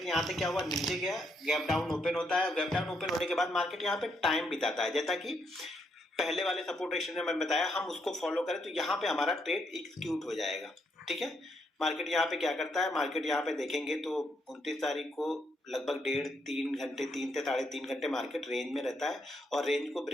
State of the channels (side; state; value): both; normal; correlation 0.76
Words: यहाँ से क्या हुआ, नीचे गया, गैप डाउन ओपन होता है। गैप डाउन ओपन होने के बाद मार्केट यहाँ पे टाइम बिताता है, जैसा कि पहले वाले सपोर्ट रेशियो में मैंने बताया, हम उसको फॉलो करें तो यहाँ पे हमारा ट्रेड एग्जीक्यूट हो जाएगा, ठीक है। मार्केट यहाँ पे क्या करता है, मार्केट यहाँ पे देखेंगे तो 29 तारीख को लगभग 1.5-3 घंटे, 3 से 3.5 घंटे मार्केट रेंज में रहता है और रेंज को